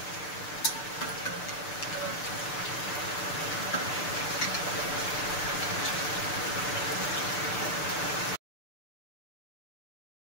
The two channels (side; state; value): right; late; 6.7 ms